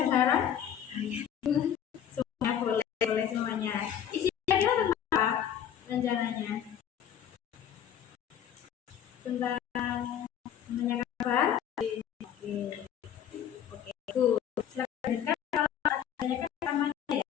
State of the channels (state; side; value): quieter; right; 9.5 dB